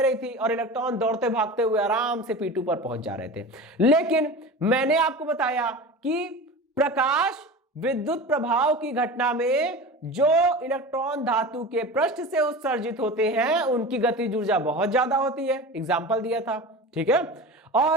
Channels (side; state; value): both; normal; correlation 0.32